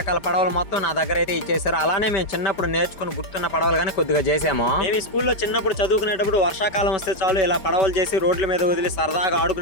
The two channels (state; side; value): late; right; 4.9 ms